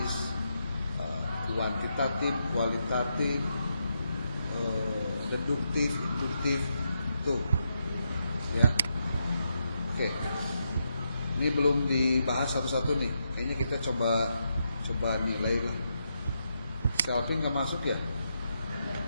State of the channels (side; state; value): both; inverted; correlation -0.82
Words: kuantitatif, kualitatif, deduktif, induktif, itu, ya. Oke, ini belum dibahas satu-satu nih. Kayaknya kita coba nilai lah. Selfie nggak masuk ya?